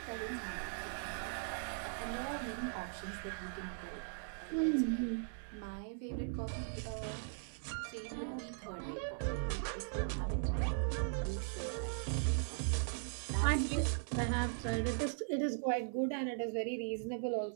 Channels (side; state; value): left; silent; 52 dB below the other